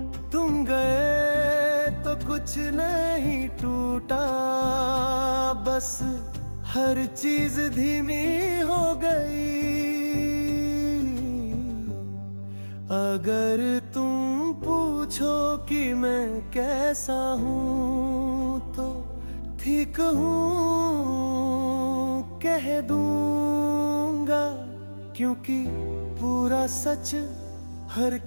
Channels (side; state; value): both; inverted; correlation -1.00